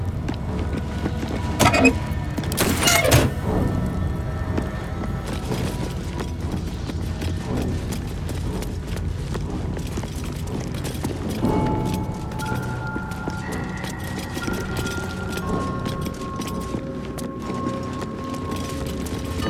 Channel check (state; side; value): identical; both; correlation 1.00